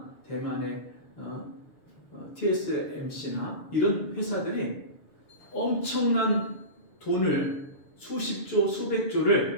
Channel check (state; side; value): late; right; 7.0 ms